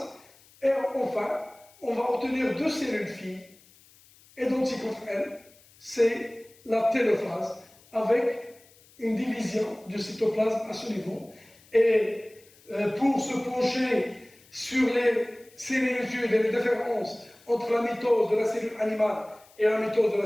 Et enfin, on va obtenir deux cellules filles identiques entre elles, c'est la télophase, avec une division du cytoplasme à ce niveau. Et pour se pencher sur les similitudes et les différences entre la mitose de la cellule animale et la mitose de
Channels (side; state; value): left; noise; hiss, 27 dB below the sound